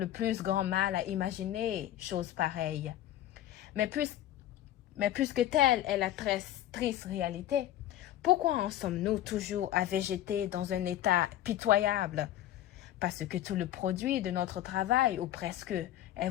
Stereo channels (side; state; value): right; quieter; 12.9 dB